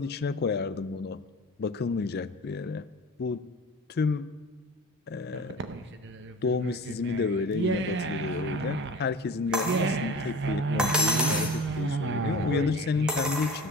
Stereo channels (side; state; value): both; normal; correlation 0.37